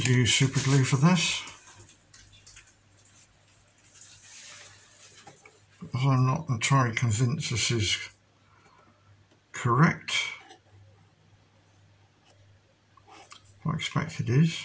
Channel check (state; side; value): identical; both; correlation 1.00